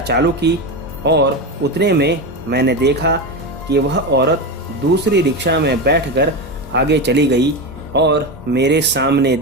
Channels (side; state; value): both; normal; correlation 0.18